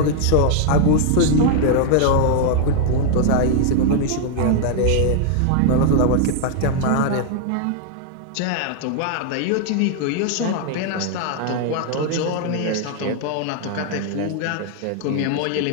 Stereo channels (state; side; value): different; both; correlation 0.00